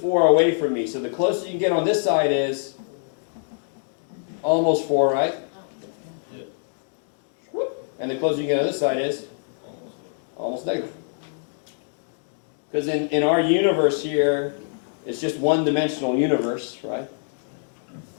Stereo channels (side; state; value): right; silent; 62 dB below the other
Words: away from me. So the closest you can get on this side is almost 4, right? Yeah. And the closest you can get on this side is almost negative. Because in our universe here, it's just one-dimensional universe, right?